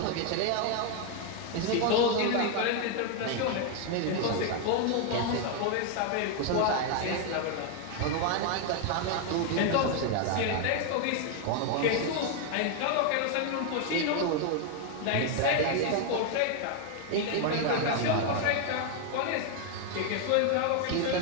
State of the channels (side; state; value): both; different; correlation 0.01